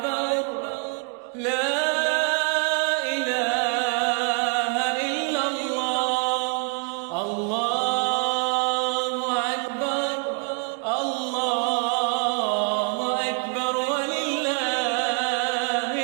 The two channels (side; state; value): left; quieter; 37.6 dB